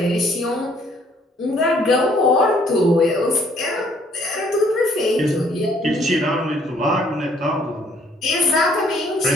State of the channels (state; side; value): normal; both; correlation 0.63